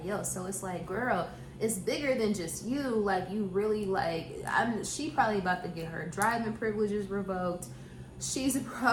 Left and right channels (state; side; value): identical; both; correlation 1.00